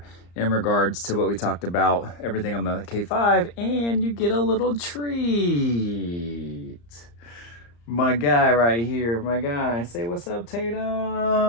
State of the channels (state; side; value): late; right; 34 ms